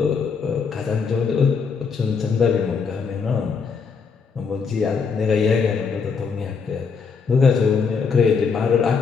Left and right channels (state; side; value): quieter; right; 5.6 dB